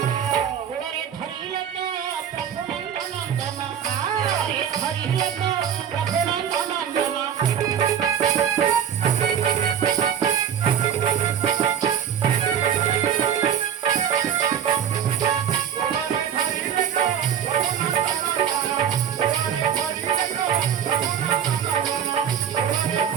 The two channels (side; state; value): left; quieter; 8.6 dB